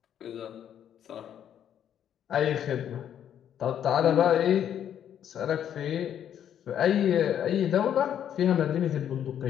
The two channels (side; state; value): right; quieter; 9.7 dB